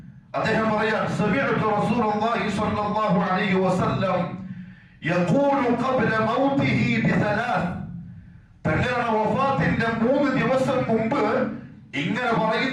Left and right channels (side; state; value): both; identical; correlation 1.00